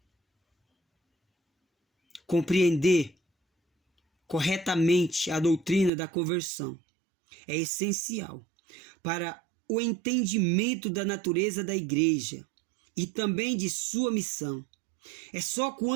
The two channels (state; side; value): drops out; left; at 5.9 s